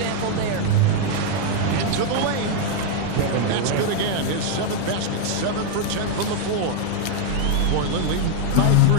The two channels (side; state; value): both; different; correlation 0.00